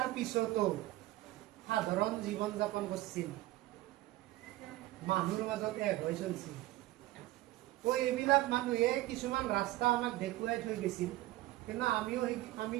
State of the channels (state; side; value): quieter; left; 17.3 dB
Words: পিছতো সাধাৰণ জীৱন যাপন কৰিছিল মানুহৰ মাজত এক হৈ চলিছিল তো এইবিলাক মানুহে কিছুমান ৰাস্তা আমাক দেখুৱাই থৈ গৈছিল কিন্তু আমি